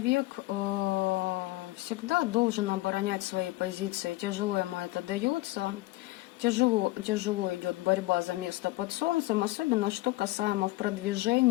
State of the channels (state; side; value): quieter; right; 19.3 dB